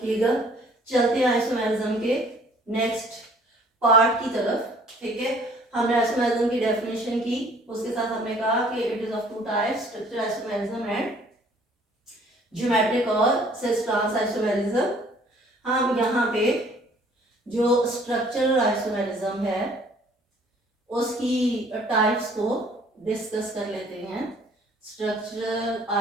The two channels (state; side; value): normal; both; correlation 0.57